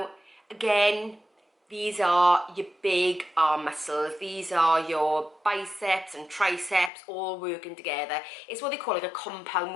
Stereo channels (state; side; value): drops out; right; at 6.9 s